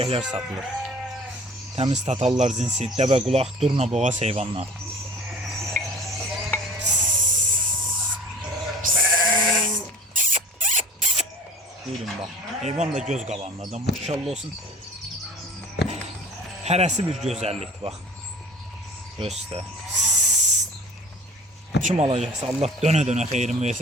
satılır. Təmiz tatallar cinsi, dəvə qulaq, durna boğaz heyvanlar. Buyurun bax, heyvan da göz qabağındadır, maşallah olsun. Hərəsi bir gözəllikdir, bax. Göstər. Kim alacaqsa Allah dönə-dönə xeyrin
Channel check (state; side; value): normal; both; correlation 0.43